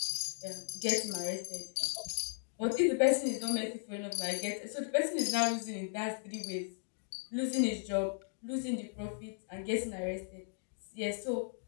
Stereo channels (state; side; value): silent; right; digital silence